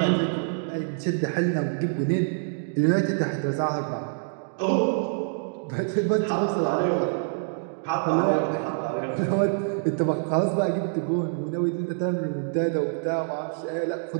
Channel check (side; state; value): left; silent; digital silence